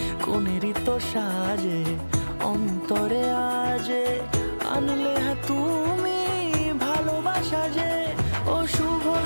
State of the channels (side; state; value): both; inverted; correlation -1.00